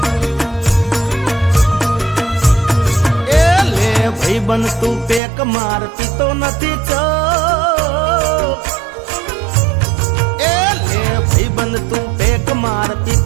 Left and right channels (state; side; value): drops out; left; at 5.2 s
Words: बन तू पेक मार पीतो नथी चो ए ले भाई बन तू पेक मार